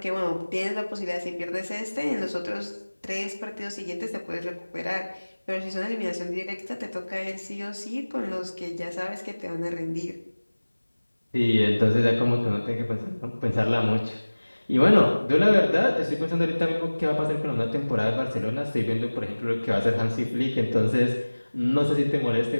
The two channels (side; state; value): both; inverted; correlation -1.00